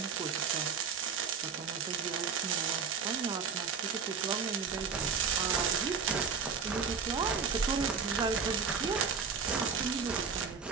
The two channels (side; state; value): left; quieter; 6.0 dB